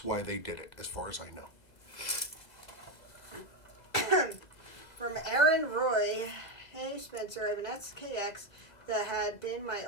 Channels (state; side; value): late; right; 2.0 ms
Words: they did it, as far as I know. From Aaron Roy, hey Spencer, I have an SKX that had been my